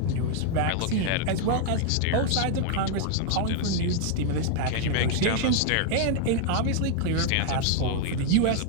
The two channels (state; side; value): different; both; correlation 0.00